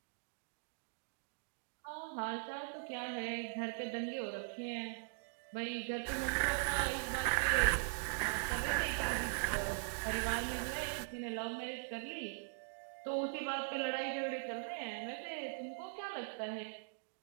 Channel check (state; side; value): silent; left; digital silence